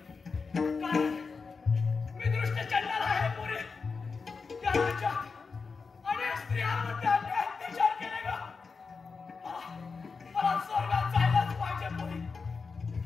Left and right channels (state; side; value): quieter; right; 4.8 dB